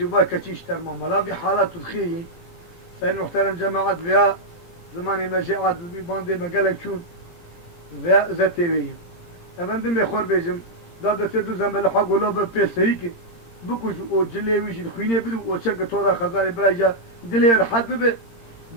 كتيش ترمى ملاذي حالات الخير سيد محترم جماعات فيها زماني مجاعات باندي مقالك شون فيها زتيوي فندم يخور بيجم دادا تدو زنبال حق ولو ببسريكي بكوش او جلي ويش الخوينة بدو او شك تودا خزاري براجا دلي رحد به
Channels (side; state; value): right; late; 17 ms